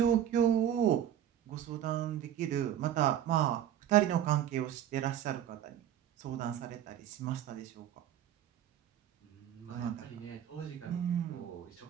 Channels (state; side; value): quieter; left; 10.7 dB